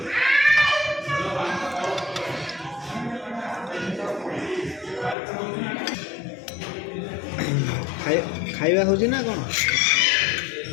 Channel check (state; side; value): drops out; right; at 5.2 s